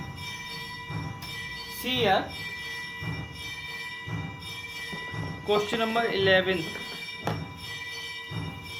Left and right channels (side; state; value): both; identical; correlation 1.00